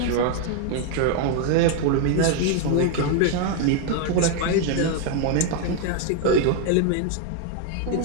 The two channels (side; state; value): both; different; correlation 0.00